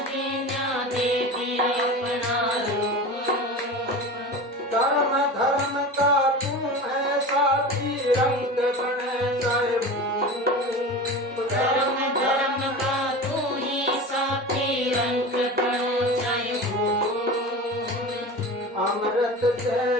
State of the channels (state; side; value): normal; both; correlation 0.31